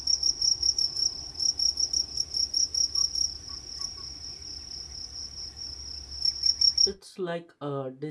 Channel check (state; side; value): identical; both; correlation 1.00